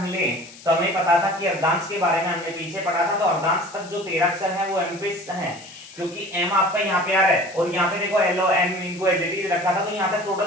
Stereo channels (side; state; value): left; noise; hiss, 19 dB below the sound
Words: ले तो हमें पता था कि अर्धांश के बारे में हमने पीछे पढ़ा था, तो अर्धांश तक जो 13 अक्षर है वो एम पे है, क्योंकि एम आपका यहाँ पे आ रहा है और यहाँ पे देखो एल ओ एम इनको एज इट इज रखा था, तो यहाँ तक